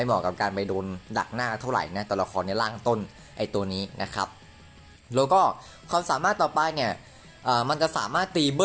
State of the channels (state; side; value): identical; both; correlation 1.00